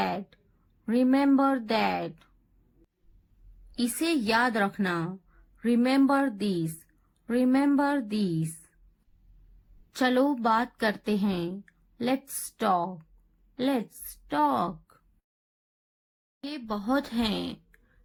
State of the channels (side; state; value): both; identical; correlation 1.00